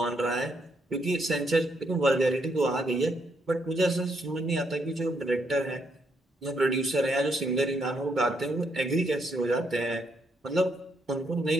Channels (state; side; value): normal; both; correlation 0.75